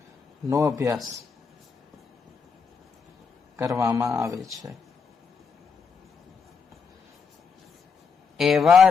નો અભ્યાસ કરવામાં આવે છે એવા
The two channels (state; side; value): quieter; right; 5.6 dB